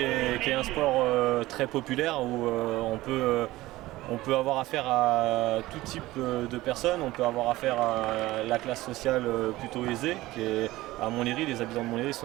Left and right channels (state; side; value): quieter; left; 17.8 dB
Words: un sport très populaire où on peut avoir affaire à tout type de personnes. On peut avoir affaire à la classe sociale plutôt aisée, qui est à Montlhéry. Les habitants de Montlhéry